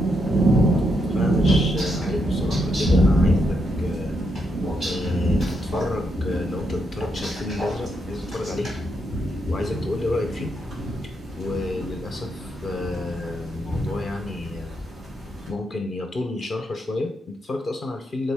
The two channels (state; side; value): normal; both; correlation 0.80